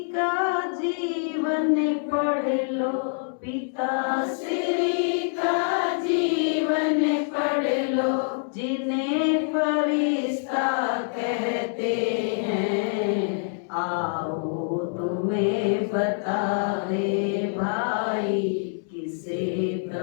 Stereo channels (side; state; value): right; silent; 61 dB below the other